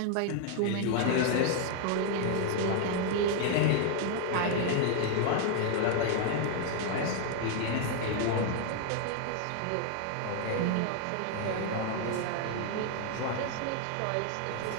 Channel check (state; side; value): different; both; correlation 0.00